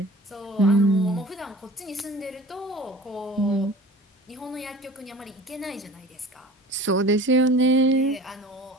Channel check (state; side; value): normal; both; correlation 0.42